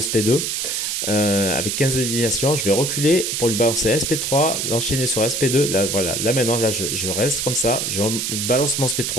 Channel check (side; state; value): right; noise; hiss, 1 dB below the sound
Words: SP2 avec 15 indignations. Je vais reculer pour lui balancer SP3, l'enchaîner sur SP2. Là voilà, là maintenant là je reste comme ça, je balance mon